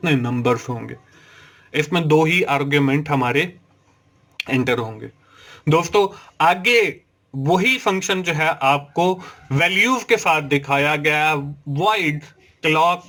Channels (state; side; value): identical; both; correlation 1.00